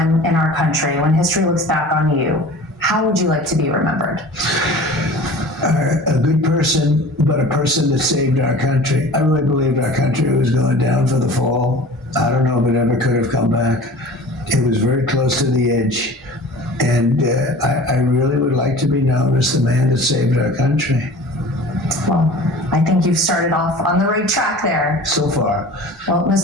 in our country, when history looks back on you, how would you like to be remembered? A good person, but a person that saved our country. I really believed our country was going down for the fall. I don't know if it ever could have come back. It was very close to the edge. And I really would like to be known as the man that saved our country. Well, I think you've started off on the right track there. So far. Well,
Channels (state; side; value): normal; both; correlation 0.41